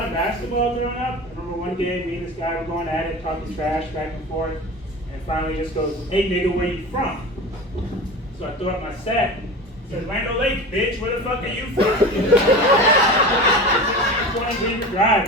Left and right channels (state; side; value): normal; both; correlation 0.32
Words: of basketball growing up. I remember one day me and this guy were going at it, talking trash back and forth, and finally just goes, hey nigga, where you from? So I threw up my set. Said, Land O'Lakes, bitch, where the fuck are you from? 20 Beaver